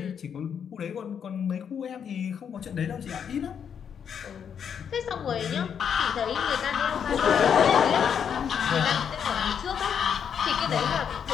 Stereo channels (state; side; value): quieter; right; 7.7 dB